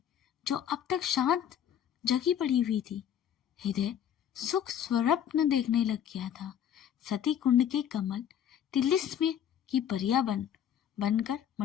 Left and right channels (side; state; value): right; quieter; 9.5 dB